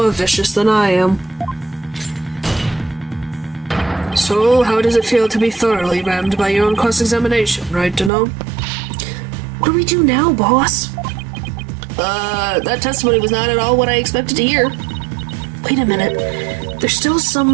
vicious than I am. So, how does it feel to be thoroughly rammed by your own cross-examination, right to know? What do we do now, boss? That testimony was not at all what I expected to hear. Wait a minute. There's still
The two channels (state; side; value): drops out; left; at 8.1 s